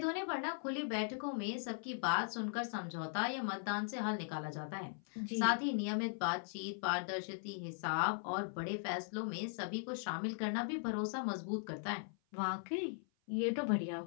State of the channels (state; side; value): silent; right; 52 dB below the other